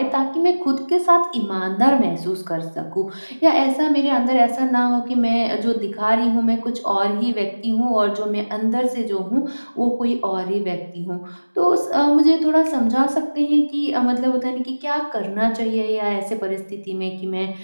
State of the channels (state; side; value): inverted; both; correlation -1.00